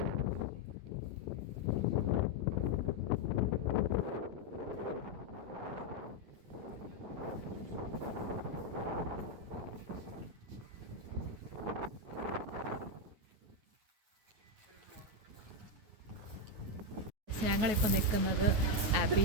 ഞങ്ങളിപ്പോൾ നിൽക്കുന്നത് അബി.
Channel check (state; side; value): late; left; 9.6 ms